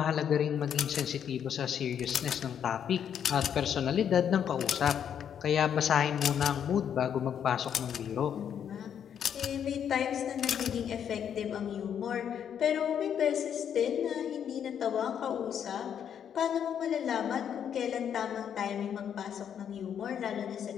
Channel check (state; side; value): quieter; right; 8.7 dB